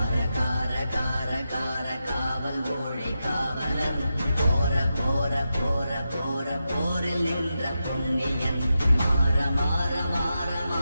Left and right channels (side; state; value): both; inverted; correlation -0.88